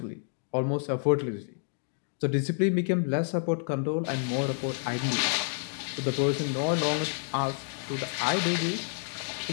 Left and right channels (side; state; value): right; silent; digital silence